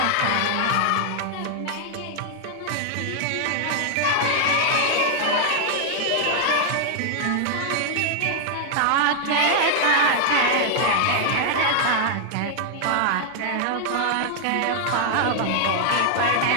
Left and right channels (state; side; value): different; both; correlation 0.00